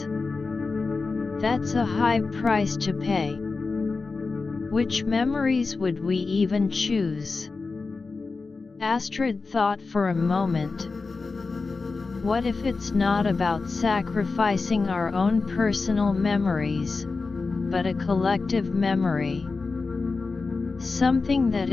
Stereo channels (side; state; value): right; quieter; 4.1 dB